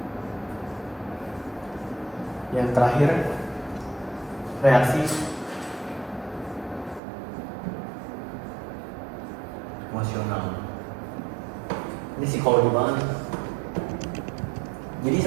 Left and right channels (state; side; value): drops out; left; at 7.0 s